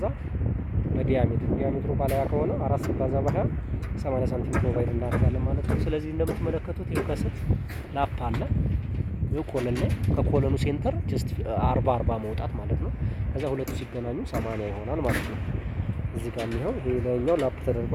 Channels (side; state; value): both; identical; correlation 1.00